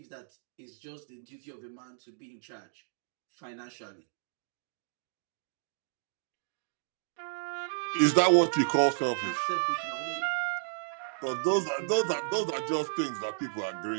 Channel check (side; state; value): left; silent; digital silence